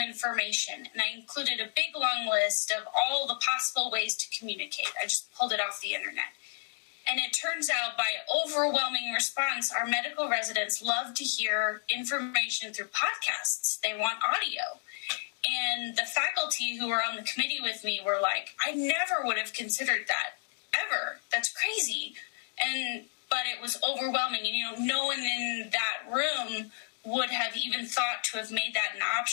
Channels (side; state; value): right; silent; digital silence